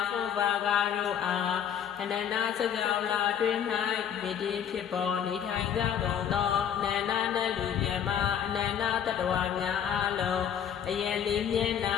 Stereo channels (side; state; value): right; quieter; 8.8 dB